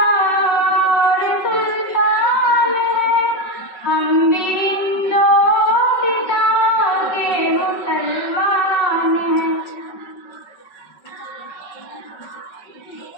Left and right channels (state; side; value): late; right; 5.3 ms